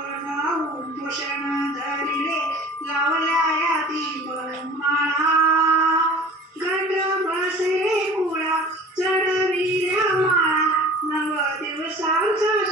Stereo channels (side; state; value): both; normal; correlation 0.43